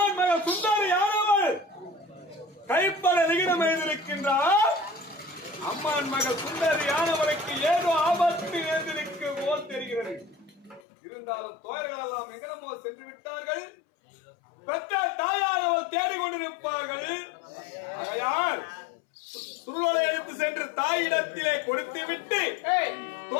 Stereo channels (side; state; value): right; drops out; at 10.8 s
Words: மகள் சுந்தரியானவள் கைப்பட விகிதம் எழுந்திருக்கின்றார். அம்மான் மகள் சுந்தரியானவளுக்கு ஏதோ ஆபத்து எழுந்திருக்கு போல் தெரிகிறது. இருந்தாலும் தோயர்கள் எல்லாம் எங்கனமோ சென்று விட்டார்கள். பெற்ற தேடிக்கொண்டிருப்பார்கள். ஆகையால் சுருளை எடுத்து சென்று தாயிடத்திலே கொடுத்து விட்டு